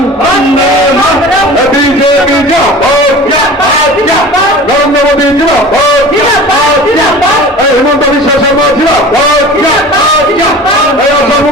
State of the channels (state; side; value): normal; both; correlation 0.39